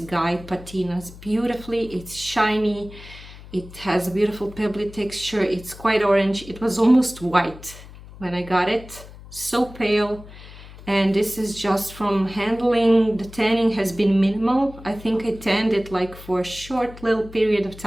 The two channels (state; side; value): noise; left; hum, 17 dB below the sound